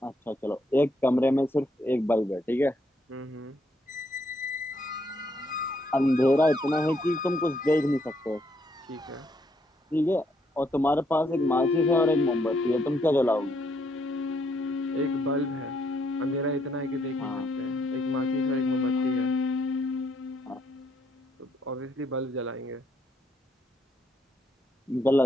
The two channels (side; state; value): both; normal; correlation 0.73